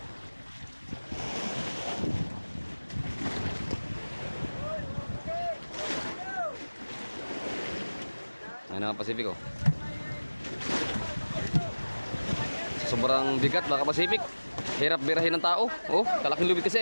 Ayan na Pacific oh. Sobrang bigat mga Pacific. Hirap birahin ng tao. Oh, kalaking lubid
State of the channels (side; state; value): both; inverted; correlation -1.00